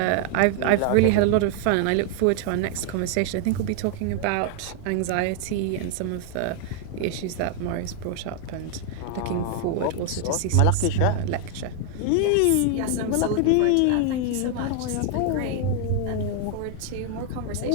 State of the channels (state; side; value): different; both; correlation 0.00